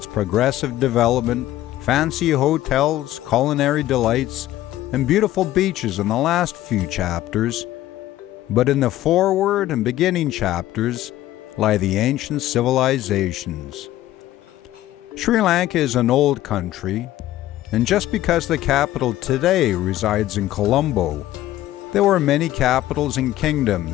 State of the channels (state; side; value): quieter; right; 14.4 dB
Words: progressive development, fancy hotels, culinary delights, and beautiful beaches in the last few chapters. But in the foreword and beginning chapters lie the ancient civilizations. Sri Lanka is an old country, and just because the capital today resides in Colombo, there were many capitals and